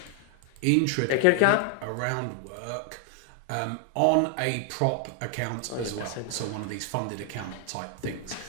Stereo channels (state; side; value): different; both; correlation 0.00